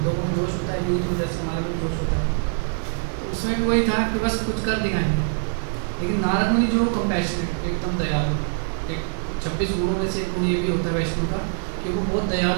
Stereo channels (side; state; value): left; silent; digital silence